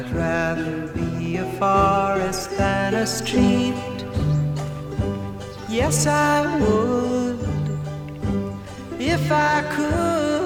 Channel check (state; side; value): identical; both; correlation 1.00